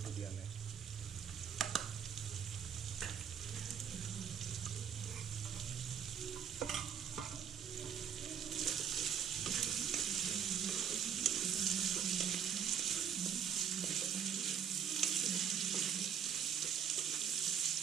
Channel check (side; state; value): left; quieter; 8.0 dB